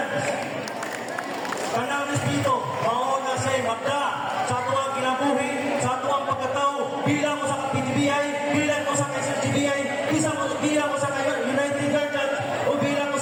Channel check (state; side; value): identical; both; correlation 1.00